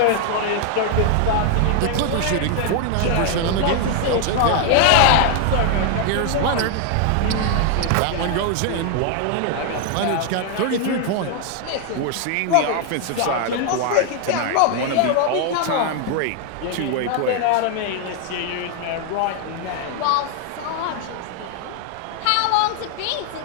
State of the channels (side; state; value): both; different; correlation 0.00